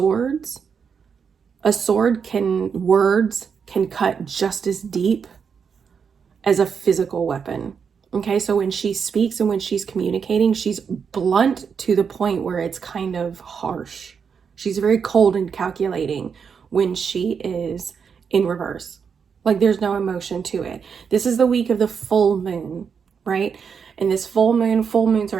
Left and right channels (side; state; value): left; quieter; 6.5 dB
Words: Words can cut just as deep as a physical weapon. Okay, so when she speaks and when she's communicating, she's blunt to the point where it's kind of harsh. She's very cold and calculating when she is in reverse. Like there's no emotion to it. This is the week of the full moon, right? And this full moons are